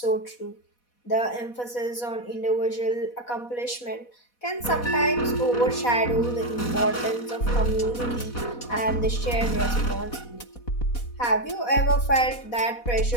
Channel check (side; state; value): right; late; 4.1 ms